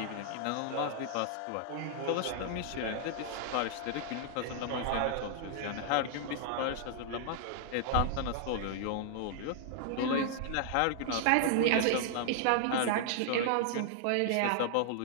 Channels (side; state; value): both; different; correlation 0.00